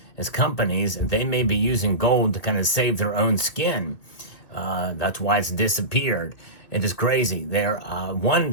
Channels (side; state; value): right; late; 2.4 ms